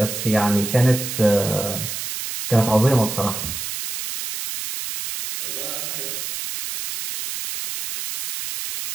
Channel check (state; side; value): noise; right; hiss, 5 dB below the sound